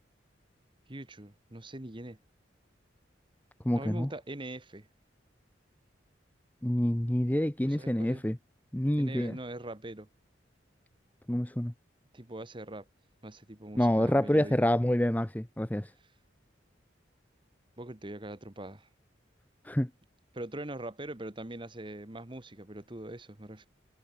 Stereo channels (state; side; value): normal; both; correlation 0.94